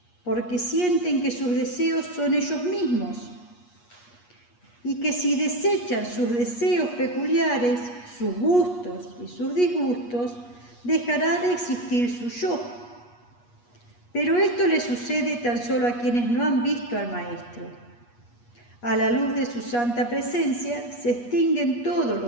porque sienten que sus deseos son ellos mismos y que si desechan sus deseos peculiares, sus gustos y sus disgustos, dejará de existir su yo. Pero esto le sucede tan solo a quienes no han visto al Maestro. A la luz de su santa presencia se extinguen todos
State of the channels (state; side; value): late; right; 8.3 ms